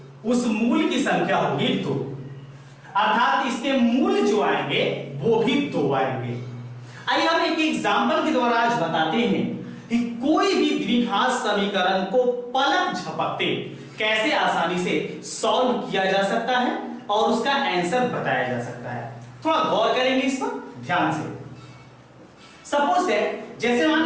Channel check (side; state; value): both; identical; correlation 1.00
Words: उस मूल की संख्या होगी 2। अर्थात इसके मूल जो आएंगे वो भी 2 आएंगे। आइए हम एक एग्जांपल के द्वारा आज बताते हैं कि कोई भी द्विघात समीकरण को पलक झपकते कैसे आसानी से सॉल्व किया जा सकता है और उसका आंसर बताया जा सकता है। थोड़ा गौर करेंगे इस पर ध्यान से। सपोज दैट, जैसे मान